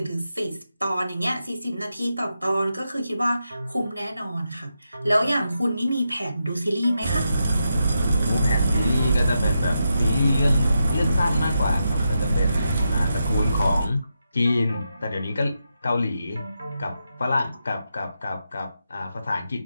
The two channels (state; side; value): inverted; both; correlation -0.86